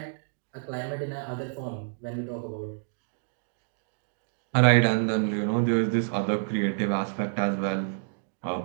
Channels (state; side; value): silent; left; digital silence